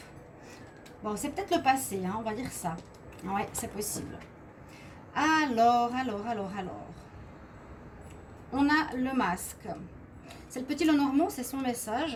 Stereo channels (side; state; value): both; identical; correlation 1.00